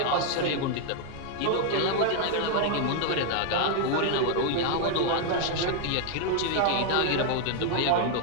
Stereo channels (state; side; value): different; both; correlation 0.00